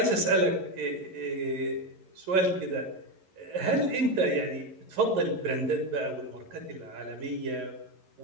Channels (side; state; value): left; late; 11 ms